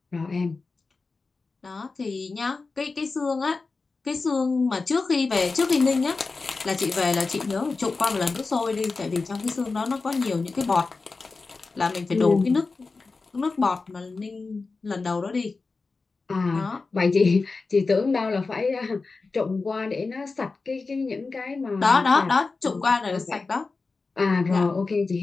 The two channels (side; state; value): right; quieter; 4.0 dB